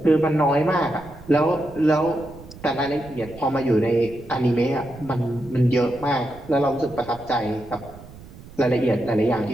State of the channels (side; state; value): right; noise; rumble, 18 dB below the sound